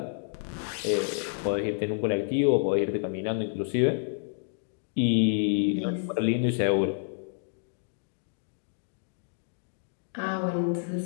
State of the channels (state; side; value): silent; right; digital silence